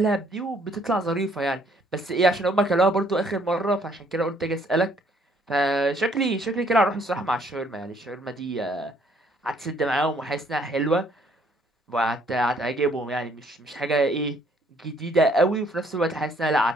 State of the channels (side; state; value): both; normal; correlation 0.64